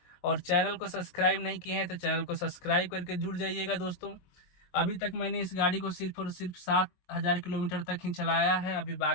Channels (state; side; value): late; right; 22 ms